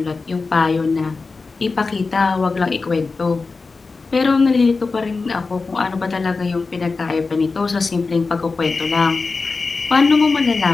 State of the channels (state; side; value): quieter; right; 4.1 dB